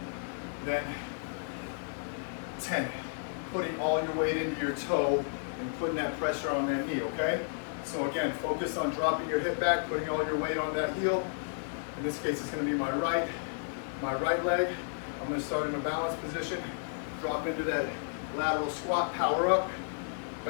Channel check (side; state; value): right; silent; digital silence